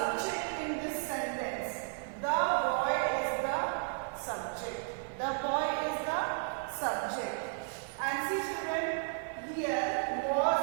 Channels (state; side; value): silent; left; 55 dB below the other